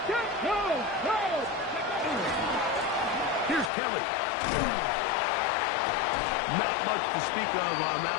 Here's Kelly. Not much to speak of on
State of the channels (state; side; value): drops out; right; at 3.7 s